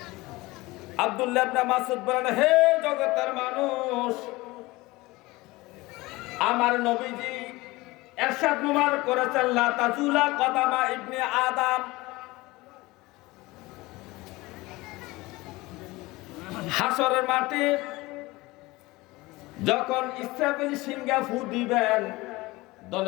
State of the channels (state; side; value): quieter; right; 21.1 dB